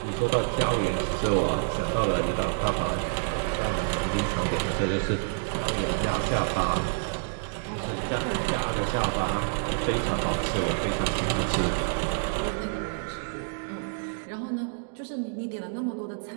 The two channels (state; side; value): silent; left; digital silence